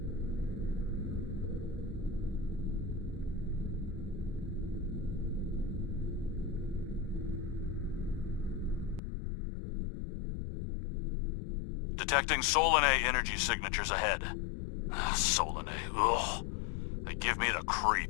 Detecting Solanae energy signatures ahead. Solanae, ugh. They give me the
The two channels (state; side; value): drops out; right; at 9.0 s